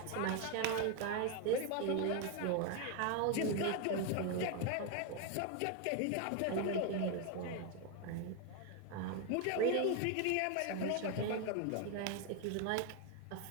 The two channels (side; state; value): both; different; correlation 0.01